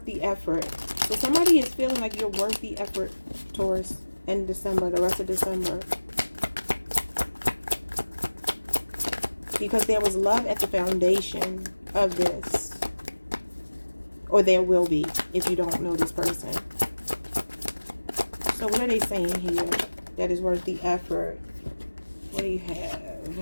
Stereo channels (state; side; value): inverted; both; correlation -1.00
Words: the effort. So somebody is feeling like you're worth the effort, Taurus, in December, the rest of December. Because there was love at the foundation of this. Or there will be if you don't know this person. So what are they saying here that is worth the effort? What do you